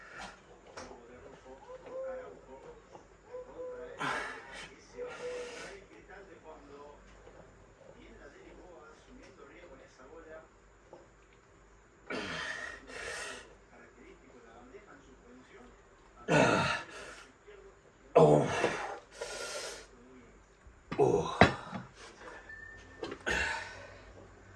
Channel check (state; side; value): identical; both; correlation 1.00